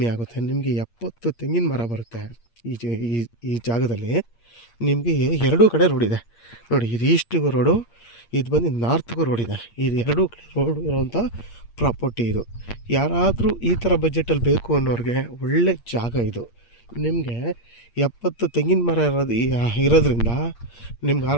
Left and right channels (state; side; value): late; right; 8.6 ms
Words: ಆಗುತ್ತೆ. ನಿಮಗೆ 70 ತೆಂಗಿನ ಮರ ಬರುತ್ತೆ ಈ ಜಾಗದಲ್ಲಿ. ನಿಮಗೆ ಎರಡೂ ಕಡೆ ರೋಡ್ ಇದೆ ನೋಡಿ. ಇದು ಈಸ್ಟಿಗೂ ರೋಡು, ಇದು ಬಂದು ನಾರ್ತ್ಗೂ ರೋಡ್ ಇದೆ. ಇದು ಎರಡೂ ಕಡೆ ರೋಡ್ ಇರೋವಂಥ ಪ್ರಾಪರ್ಟಿ ಇದು. ಯಾರಾದರೂ ಈ ಥರ ಬಜೆಟಲ್ಲಿ ಬೇಕು ಅನ್ನೋರಿಗೆ ಒಳ್ಳೆ ಜಾಗ ಇದು. ನಿಮಗೆ 70 ತೆಂಗಿನ ಮರ ಇರೋದ್ರಿಂದ ನಿಮ್ಗೆ